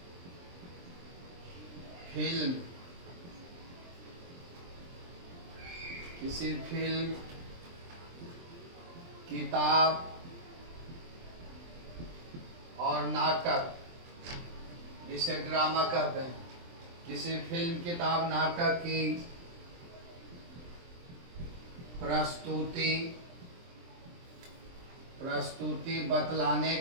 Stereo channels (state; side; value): late; left; 23 ms